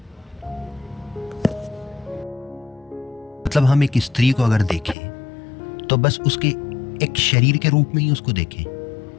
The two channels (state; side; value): drops out; right; at 5.0 s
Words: मतलब हम एक स्त्री को अगर देखें तो बस उसके एक शरीर के रूप में ही उसको देखें।